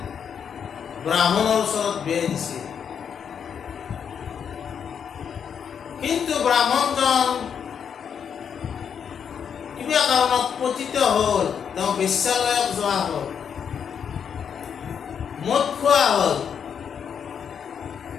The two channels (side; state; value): right; quieter; 7.5 dB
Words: ব্ৰাহ্মণৰ ওচৰত বিয়া দিছিল, কিন্তু ব্ৰাহ্মণজন কিবা কাৰণত পতিত হ'ল, তেওঁ বেশ্যালয়ত যোৱা হ'ল, মদ খোৱা হ'ল,